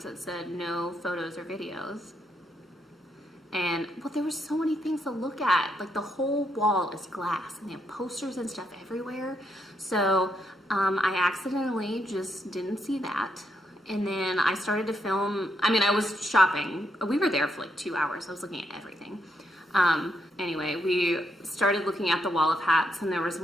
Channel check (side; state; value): both; normal; correlation 0.78